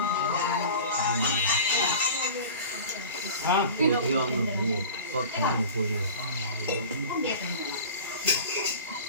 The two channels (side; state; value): both; inverted; correlation -0.38